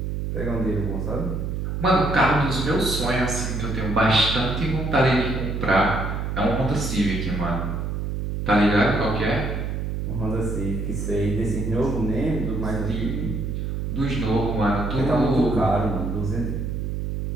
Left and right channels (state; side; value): noise; right; hum, 3 dB below the sound